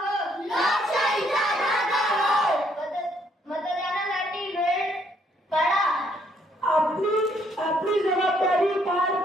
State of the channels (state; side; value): normal; both; correlation 0.69